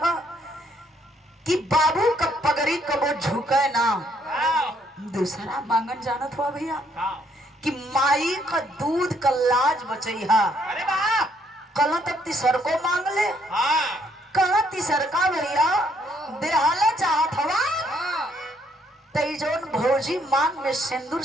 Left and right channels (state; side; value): normal; both; correlation 0.69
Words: कि बाबू का पगड़ी कबो झुके ना। दूसरा मांगन जानत हुआ भैया कि माई का दूध का लाज बचैहा। कल तक तीसर को मांग ले, कल तीसर का भैया देहाला चाहत हवा तई जोन भौजी मांग में सिंदूर